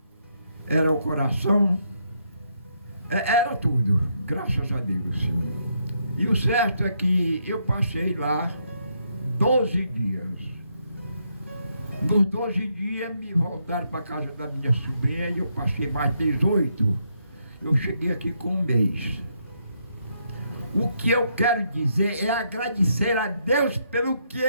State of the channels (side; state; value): both; inverted; correlation -0.76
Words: era o coração, era tudo, graças a Deus. Sim. E o certo é que eu passei lá 12 dias. Nos 12 dias me voltaram para a casa da minha sobrinha e eu passei mais 18. Eu cheguei aqui com 1 mês. O que eu quero dizer é agradecer a Deus pelo que